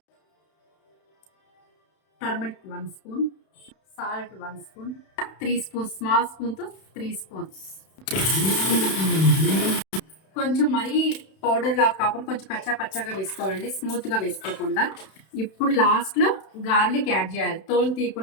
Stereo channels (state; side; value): late; right; 31 ms